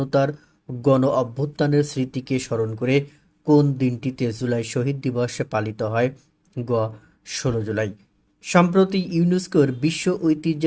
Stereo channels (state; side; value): identical; both; correlation 1.00